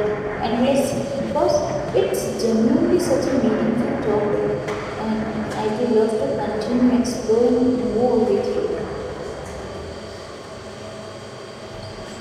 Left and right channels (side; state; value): both; identical; correlation 1.00